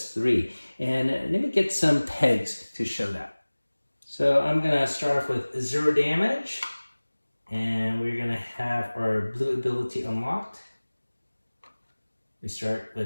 3. And let me get some pegs to show that. So I'm gonna start off with 0 damage, and we're gonna have our blue ability unlocked. We start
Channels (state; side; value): inverted; both; correlation -1.00